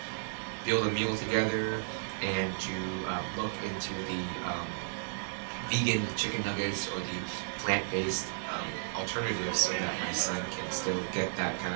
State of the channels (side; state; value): left; silent; digital silence